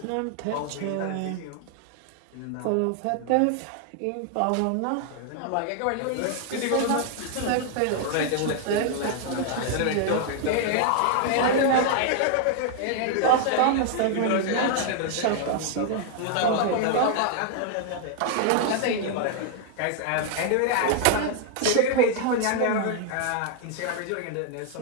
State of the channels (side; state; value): both; different; correlation 0.00